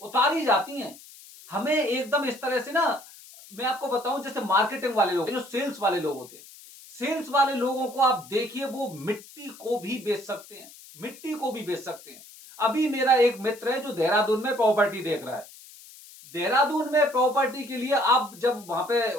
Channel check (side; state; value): left; noise; hiss, 20 dB below the sound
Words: जाती है। हमें एकदम इस तरह से ना, मैं आपको बताऊं, जैसे मार्केटिंग वाले लोग, जो सेल्स वाले लोग होते हैं, सेल्स वाले लोगों को आप देखिए, वो मिट्टी को भी बेच सकते हैं, मिट्टी को भी बेच सकते हैं। अभी मेरा एक मित्र है जो देहरादून में प्रॉपर्टी देख रहा है। देहरादून में प्रॉपर्टी के लिए आप जब वहां